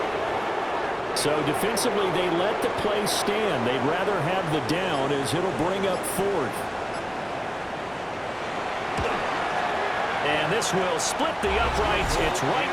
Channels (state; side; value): identical; both; correlation 1.00